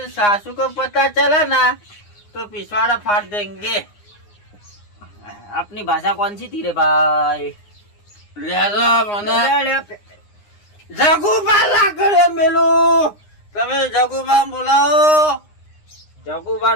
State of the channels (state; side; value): late; right; 9.7 ms